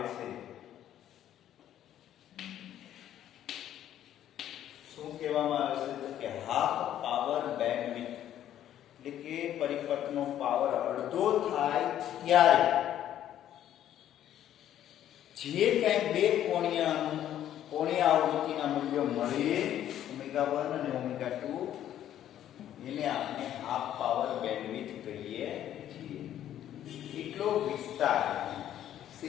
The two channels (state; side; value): quieter; right; 11.4 dB